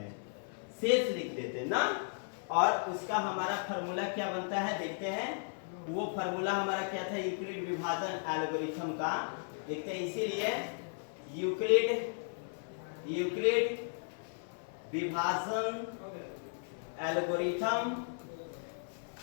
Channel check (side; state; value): right; silent; 54 dB below the other